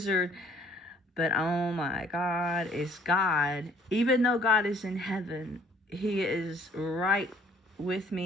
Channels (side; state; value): both; normal; correlation 0.59